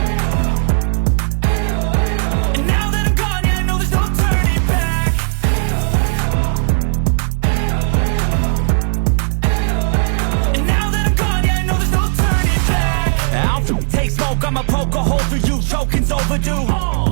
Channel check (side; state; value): left; silent; 62 dB below the other